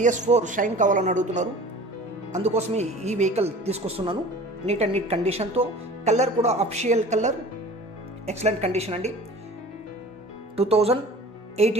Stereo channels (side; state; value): both; normal; correlation 0.43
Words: షైన్ కావాలని అడుగుతున్నారు, అందుకోసమే ఈ వెహికల్ తీసుకొస్తున్నాను. నీట్ అండ్ నీట్ కండిషన్తో, కలర్ కూడా అఫిషియల్ కలర్, ఎక్సలెంట్ కండిషన్ అండి.